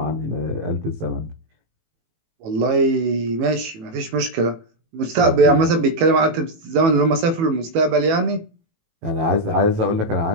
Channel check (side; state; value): left; late; 18 ms